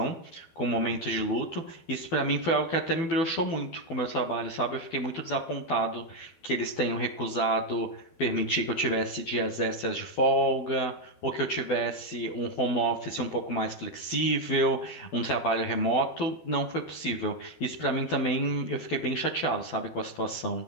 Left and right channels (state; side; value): late; right; 12 ms